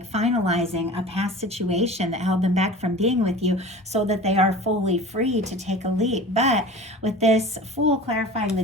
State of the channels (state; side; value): normal; both; correlation 0.38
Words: finalizing a past situation that held them back from being with you so that they are fully free to take a leap. But with this Fool clarifying the